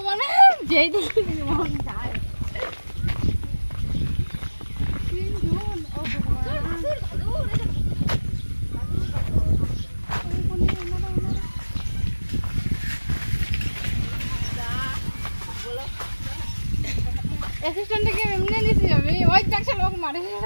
মানে যেই দিকে মন যায় অ্যাসিস্ট্যান্টকে এমনি নিছি আমি ওই দেখছ লোক মারে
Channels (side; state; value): both; inverted; correlation -1.00